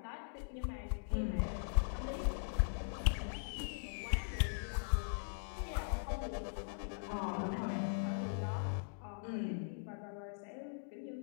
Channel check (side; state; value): right; silent; digital silence